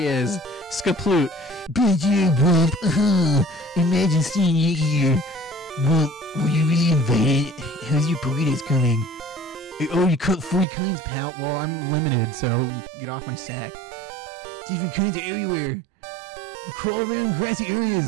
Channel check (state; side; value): drops out; left; at 10.7 s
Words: is. Skaploot. Imagine seeing you here. Well, were you really invited? How's your burritos coming? Oh, you cooked 40 kinds, pal. Well, I'm limited, so get off my sack. Different kinds are everywhere. You crawl around grassy